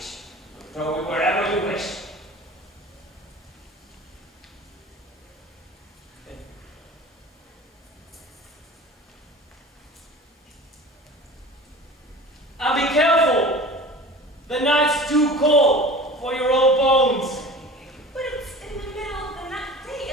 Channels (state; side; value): normal; both; correlation 0.39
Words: and throw it wherever you wish. And be careful! The nights do too cold for your old bones. But it's in the middle of the night